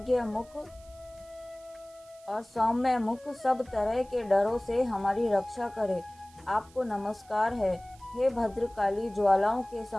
मुख और सौम्य मुख सब तरह के डरों से हमारी रक्षा करे। आपको नमस्कार है। हे भद्रकाली, ज्वालाओं के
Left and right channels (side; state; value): right; noise; hiss, 27 dB below the sound